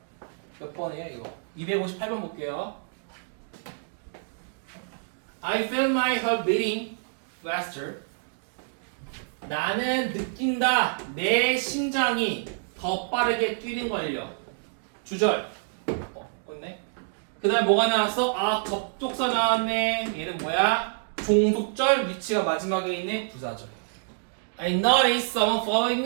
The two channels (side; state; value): left; silent; digital silence